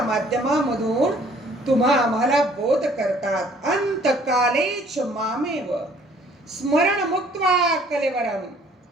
माध्यमामधून तुम्हा आम्हाला बोध करतात. अंतकालेच मामेव स्मरण मुक्त्वा कलेवरम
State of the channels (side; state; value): both; normal; correlation 0.58